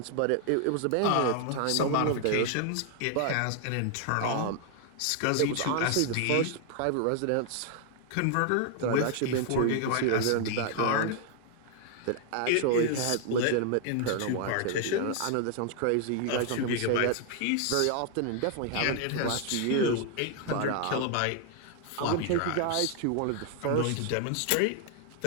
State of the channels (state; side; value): different; both; correlation 0.00